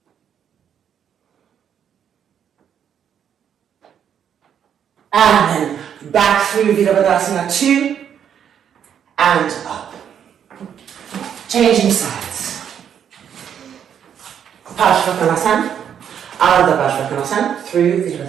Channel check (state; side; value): quieter; left; 8.6 dB